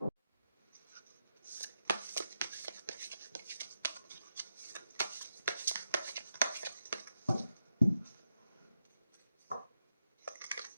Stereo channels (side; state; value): both; inverted; correlation -0.86